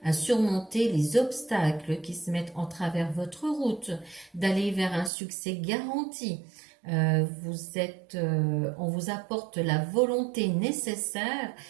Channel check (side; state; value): left; drops out; at 5.1 s